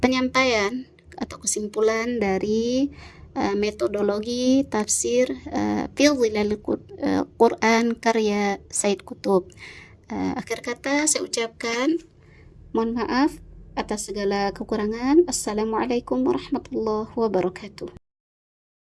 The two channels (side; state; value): both; identical; correlation 1.00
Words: atau kesimpulan dari metodologi tafsir fi zilal Quran karya Said Qutb. Akhir kata saya ucapkan mohon maaf atas segala kekurangan. Assalamualaikum warahmatullahi wabarakatuh.